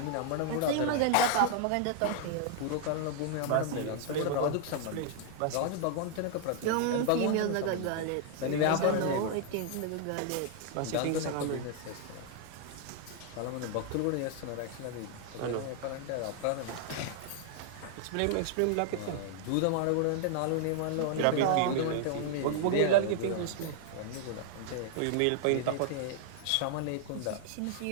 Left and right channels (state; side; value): different; both; correlation 0.00